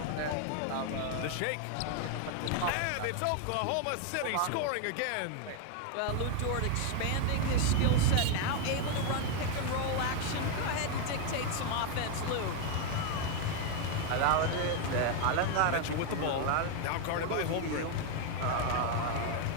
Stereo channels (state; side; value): different; both; correlation 0.01